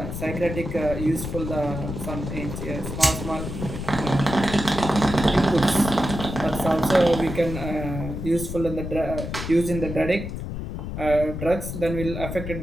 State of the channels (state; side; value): noise; left; rumble, 6 dB below the sound